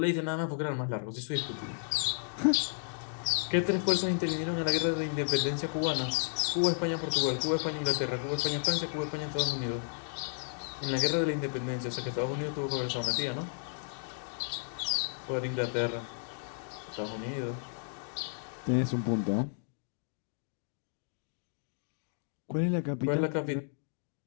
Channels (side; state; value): right; silent; digital silence